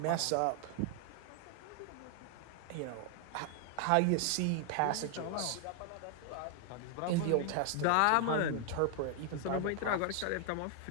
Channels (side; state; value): both; different; correlation 0.00